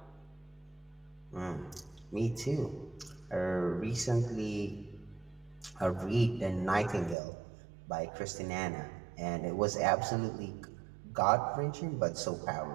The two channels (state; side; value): drops out; left; at 7.2 s